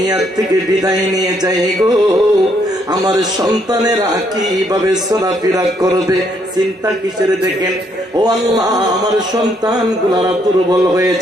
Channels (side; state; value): both; normal; correlation 0.71